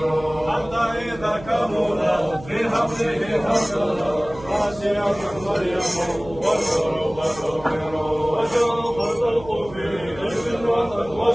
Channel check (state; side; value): noise; right; hum, 17 dB below the sound